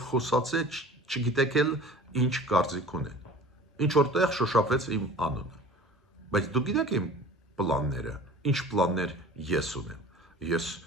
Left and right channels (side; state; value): both; normal; correlation 0.43